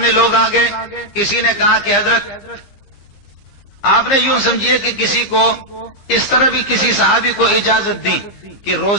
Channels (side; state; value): right; late; 15 ms